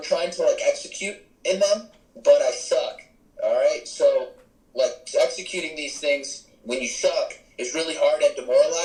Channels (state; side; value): identical; both; correlation 1.00